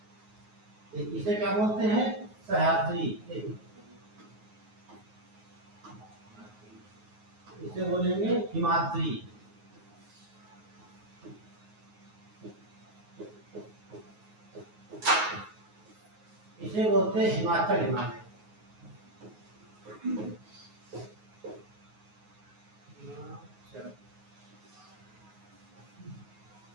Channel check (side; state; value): left; late; 9.4 ms